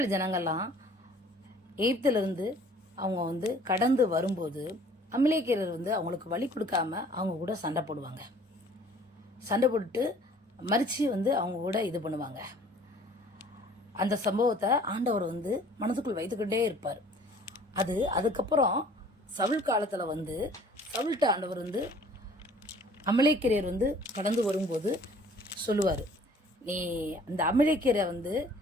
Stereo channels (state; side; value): normal; both; correlation 0.53